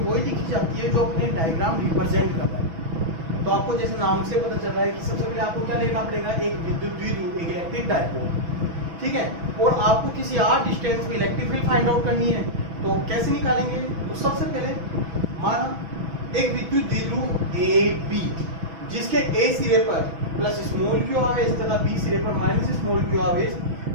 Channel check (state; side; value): late; left; 6.1 ms